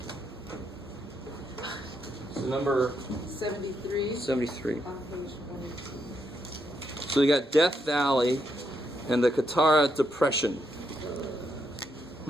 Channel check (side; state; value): both; normal; correlation 0.79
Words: So number 73. 73. On page 22. So you got Death Valley and the Katara Depression.